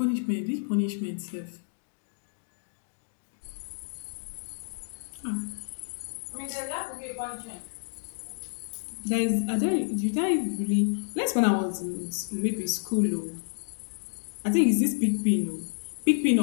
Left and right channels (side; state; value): right; silent; digital silence